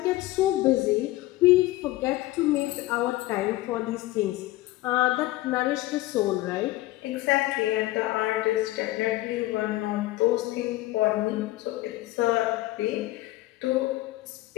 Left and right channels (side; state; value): right; quieter; 17.7 dB